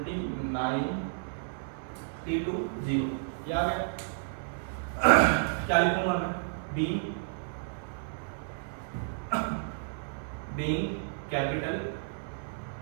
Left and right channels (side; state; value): left; silent; 56 dB below the other